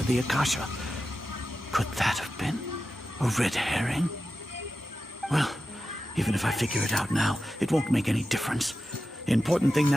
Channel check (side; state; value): both; normal; correlation 0.92